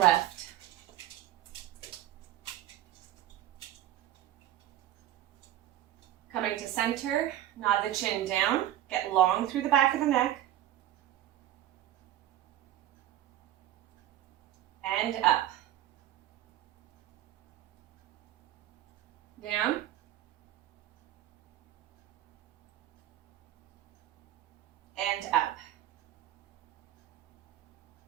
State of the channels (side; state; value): left; quieter; 13.0 dB